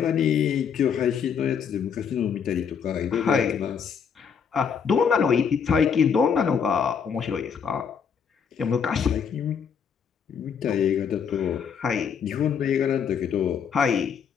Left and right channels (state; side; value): quieter; right; 7.0 dB